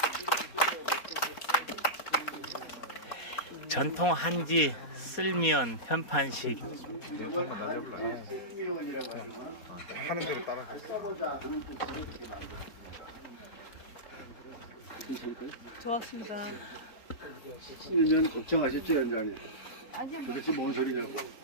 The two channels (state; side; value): late; right; 4.2 ms